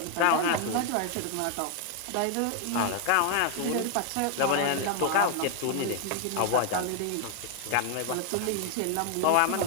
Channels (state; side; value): different; both; correlation 0.00